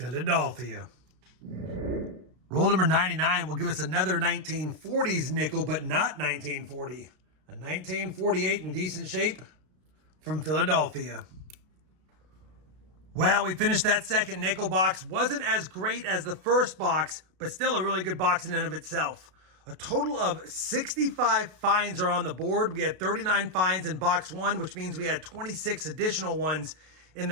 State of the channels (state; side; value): late; left; 32 ms